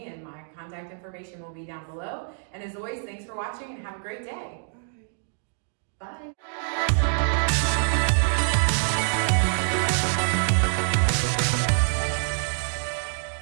and my contact information will be down below. And as always, thanks for watching and have a great day. Bye. Bye.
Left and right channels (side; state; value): left; silent; 61 dB below the other